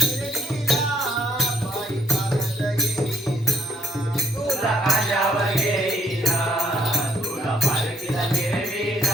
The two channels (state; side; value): normal; both; correlation 0.69